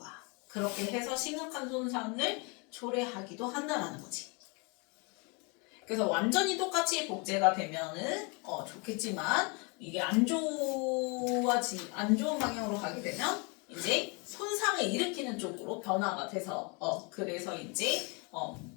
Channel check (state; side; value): quieter; right; 31.6 dB